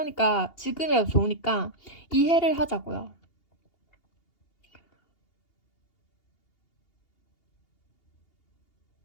지금이라도 좋으니까 이해를 하자고요.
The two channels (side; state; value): right; late; 2.8 ms